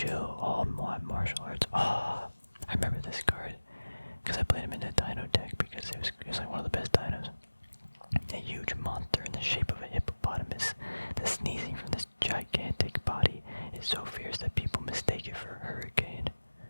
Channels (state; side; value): inverted; both; correlation -1.00